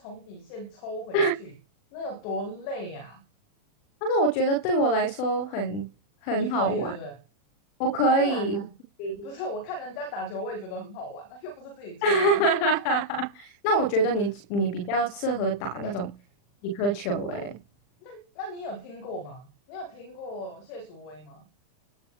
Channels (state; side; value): late; right; 40 ms